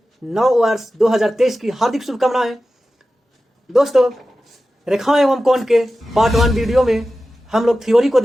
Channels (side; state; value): both; normal; correlation 0.94